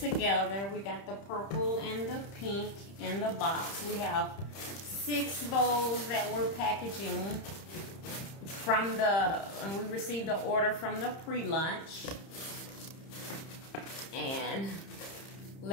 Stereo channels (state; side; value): late; right; 30 ms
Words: We got the purple and the pink in the box. We have 6 bows that we're packaging from and we received the order from the pre-lunch. And